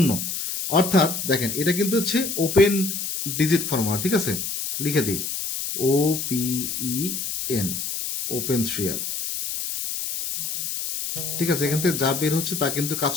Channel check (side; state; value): left; noise; hiss, 4 dB below the sound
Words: অর্থাৎ দেখেন এটা কিন্তু হচ্ছে ওপেন ডিজিট ফর্মুলা। ঠিক আছে, লিখে দিই OPEN, ওপেন 3 আপ। ঠিক আছে, এখান থেকে যা বের হচ্ছে তা কিন্তু কাজ